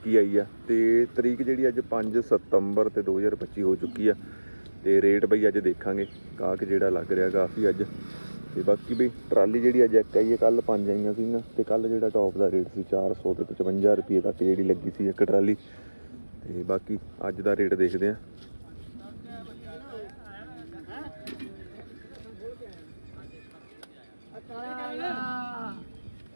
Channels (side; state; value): both; inverted; correlation -1.00